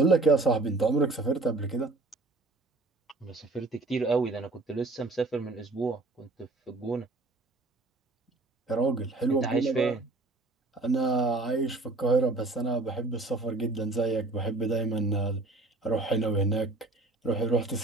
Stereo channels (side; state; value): left; quieter; 3.3 dB